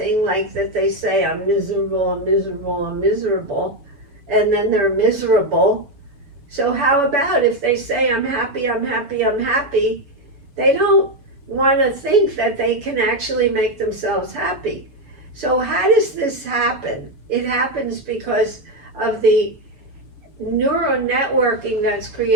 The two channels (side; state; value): left; late; 7.0 ms